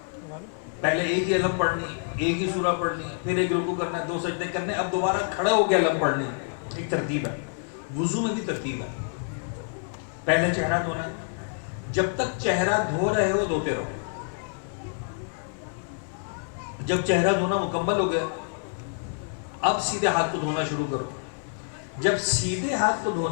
پہلے ایک ہی علم پڑھنی، ایک ہی سورہ پڑھنی، پھر ایک رکوع کرنا ہے، 2 سجدے کرنے، اب دوبارہ کھڑے ہو کے علم پڑھنی. ایک ترتیب ہے. وضو میں بھی ترتیب ہے. پہلے چہرہ دھونا، جب تک چہرہ دھو رہے ہو دھوتے رہو. جب چہرہ دھونا مکمل ہو گیا اب سیدھے ہاتھ کو دھونا شروع کرو. جب سیدھے ہاتھ کو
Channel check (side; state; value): right; silent; digital silence